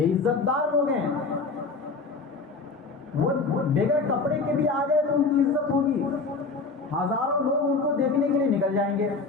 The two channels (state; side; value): quieter; right; 4.1 dB